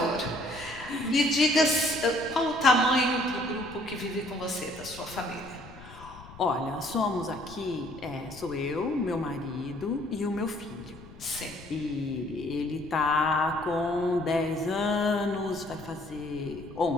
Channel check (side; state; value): left; noise; rumble, 18 dB below the sound